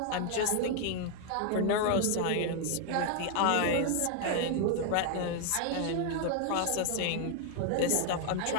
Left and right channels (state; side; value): different; both; correlation 0.00